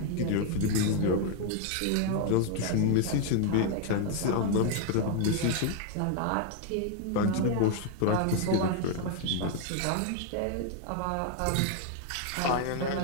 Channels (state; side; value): different; both; correlation 0.00